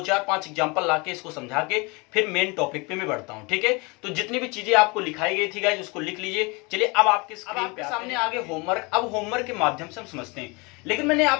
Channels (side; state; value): right; quieter; 27.9 dB